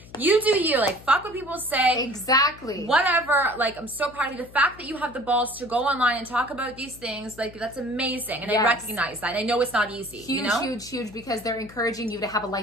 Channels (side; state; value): left; noise; hum, 21 dB below the sound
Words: you do you, like, fuck what people say. Exactly. Whatever. Like, I'm so proud of you. The fact that you have the balls to go online and talk about these things, like, that's amazing. And I recognize that. And I know it's not easy. Huge, you know? huge, because they're encouraging you to have a